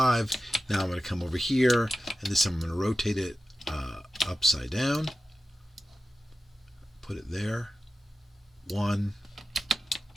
Now I'm going to come over here, and this time I'm going to rotate it upside down. Put it there. 1,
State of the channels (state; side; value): normal; both; correlation 0.93